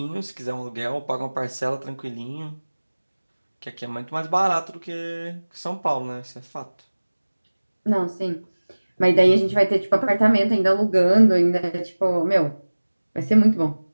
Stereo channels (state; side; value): inverted; both; correlation -1.00